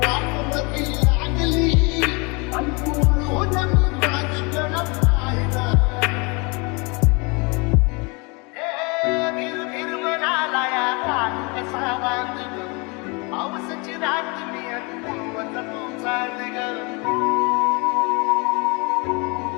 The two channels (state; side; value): quieter; right; 29.8 dB